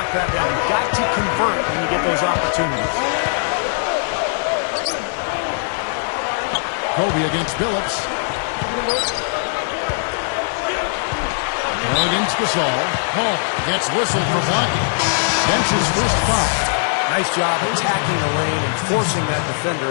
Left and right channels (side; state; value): right; silent; digital silence